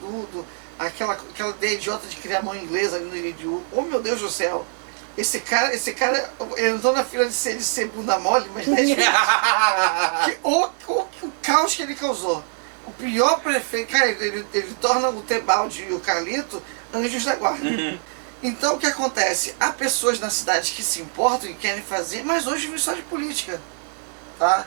aquela ideia idiota de criar mão inglesa ali no Iridiú. Oh, meu Deus do céu! Esse cara, ele entrou na fila de ser bunda mole, mas não é o caos que ele causou. O pior prefeito, cara, ele torna o Tebaldi e o Carlito anjos da guarda. Então o que acontece? Há pessoas na cidade que se importam e querem fazer, mas hoje vive só de política. Tá?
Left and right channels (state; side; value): silent; left; 63 dB below the other